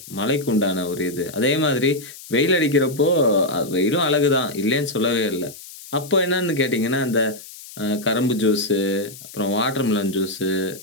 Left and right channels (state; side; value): noise; left; hiss, 16 dB below the sound